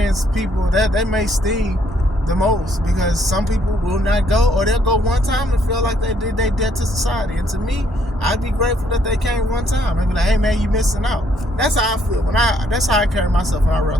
people that may sting the most, because some people will not go, or they'll go one time and feel like they did their debt to society. And to me, I'd be grateful that they came one time. I'd be like, hey man, you missing out. That's how I feel that's how I carry myself when I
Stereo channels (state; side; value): normal; both; correlation 0.69